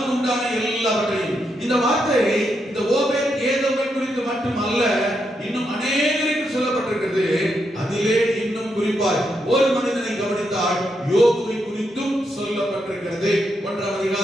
உண்டான எல்லாவற்றையும். இந்த வார்த்தை இந்த ஓபேத் ஏதோமை குறித்து மட்டுமல்ல இன்னும் அநேகருக்கு சொல்லப்பட்டிருக்கிறது. அதிலே இன்னும் குறிப்பாய் ஒரு மனிதனை கவனித்தால் யோபுவை குறித்தும் சொல்லப்பட்டிருக்கிறது. 1ஆம்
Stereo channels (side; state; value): both; normal; correlation 0.81